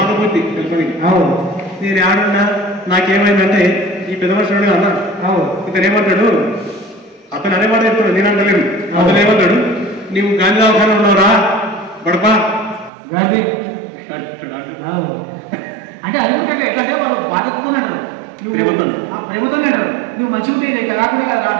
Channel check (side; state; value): left; drops out; at 12.9 s